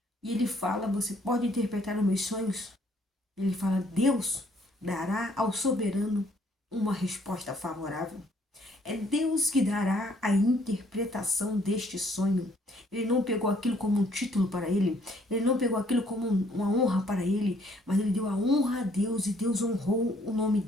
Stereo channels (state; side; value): normal; both; correlation 0.64